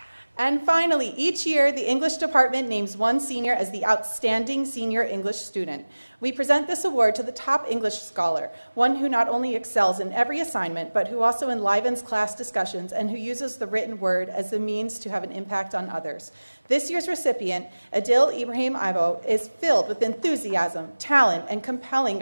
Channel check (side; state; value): both; inverted; correlation -1.00